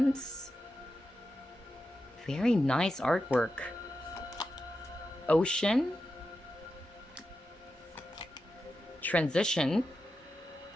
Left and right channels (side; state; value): both; normal; correlation 0.90